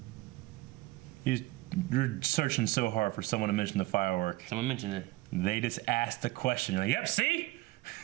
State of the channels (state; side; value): quieter; left; 19.1 dB